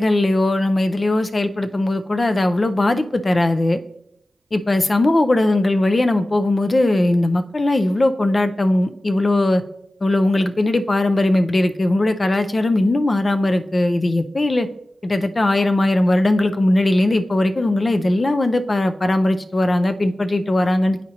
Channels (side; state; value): both; normal; correlation 0.96